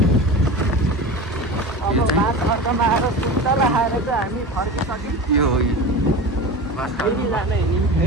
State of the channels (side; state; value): both; normal; correlation 0.31